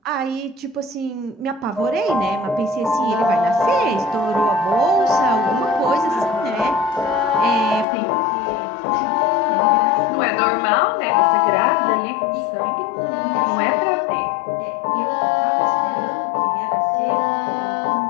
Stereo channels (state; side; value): drops out; right; at 7.9 s